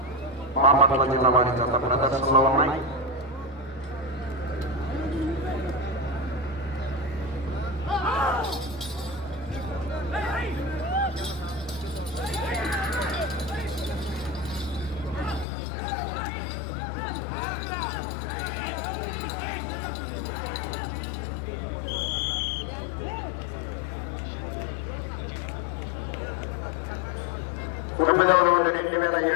బాపట్ల జిల్లా వారి జత ప్రదర్శనలో ఉన్నాయి. తొమ్మిదవ రౌండ్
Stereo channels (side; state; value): right; drops out; at 15.5 s